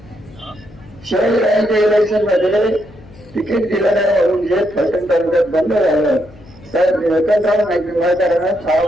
शहरांच्या इलेक्शन मध्ये तिकीट दिलं नाही म्हणून जे फलटण तालुक्यात बंद झालं तर निळकंठराव नाईक निंबाळकरांना 6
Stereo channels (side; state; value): left; noise; hum, 23 dB below the sound